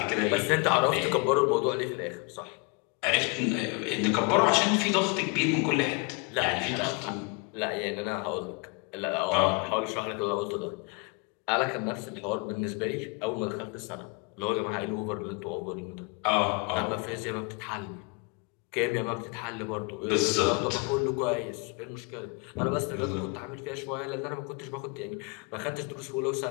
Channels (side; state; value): right; quieter; 30.0 dB